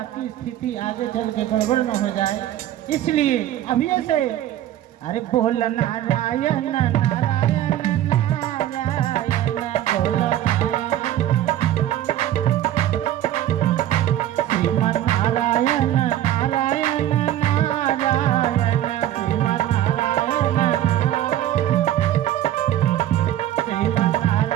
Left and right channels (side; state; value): left; quieter; 12.6 dB